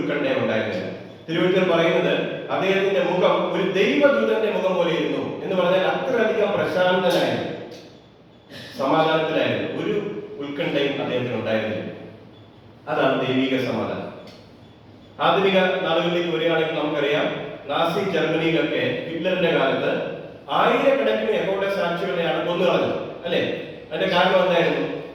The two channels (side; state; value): both; identical; correlation 1.00